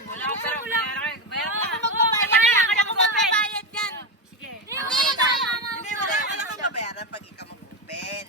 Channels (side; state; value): both; normal; correlation 0.14